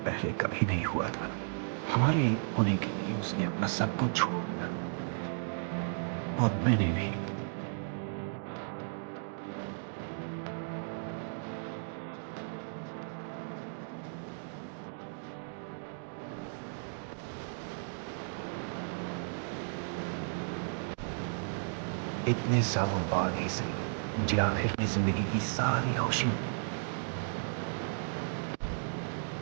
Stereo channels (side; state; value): left; silent; digital silence